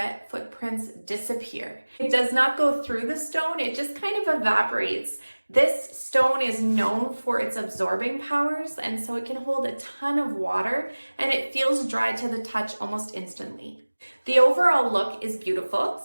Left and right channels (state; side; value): inverted; both; correlation -1.00